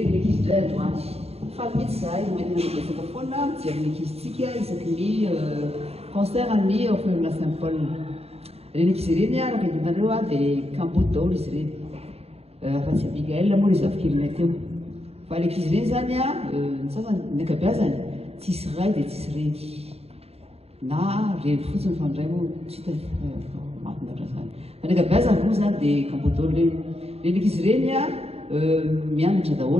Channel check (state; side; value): late; left; 0.29 ms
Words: ny ankizy indray androany fa mety zahay mety nanabetsaka foana mijery ny ankizitsika isaky ny concert ny orphelinat Saint-Paul. Reny ankizy ireny araka hitanareo dia Kamboty daholo izy ireny. Fa tsy Abigail moa izy afikirina teo. Fa ilay ankizy ireny zany ny sasany ny ankabeazany tsisy ray dia tsisy reny. Na reny fotsiny fa ndray moa tsy hita mahafinaritra zany. Fa ny ankabeazany moa zany dia Kamboty daholo reny. Reny ankizy ireny mianatra